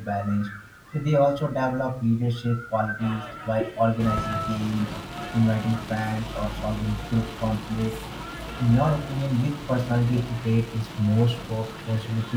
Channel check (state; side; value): identical; both; correlation 1.00